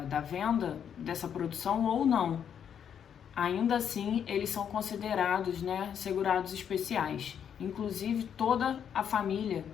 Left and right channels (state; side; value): quieter; right; 8.3 dB